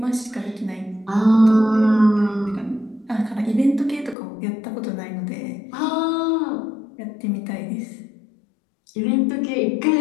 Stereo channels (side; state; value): right; drops out; at 4.2 s